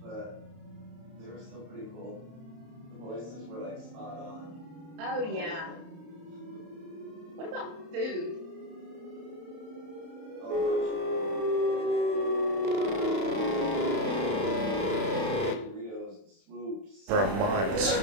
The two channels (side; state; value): left; late; 31 ms